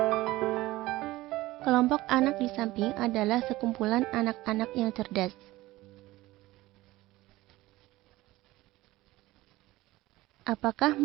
Kelompok anak di samping adalah sekumpulan anak-anak yang cerdas. Apakah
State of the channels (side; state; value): left; quieter; 18.1 dB